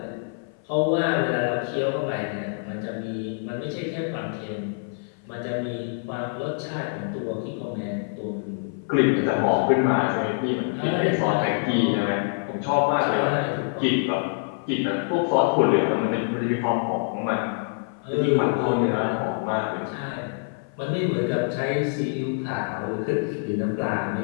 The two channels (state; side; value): silent; right; 56 dB below the other